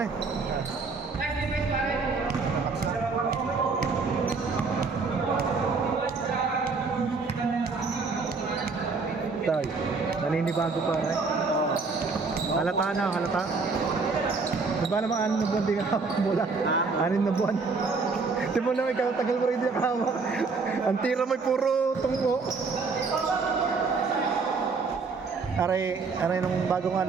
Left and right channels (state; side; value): quieter; left; 4.4 dB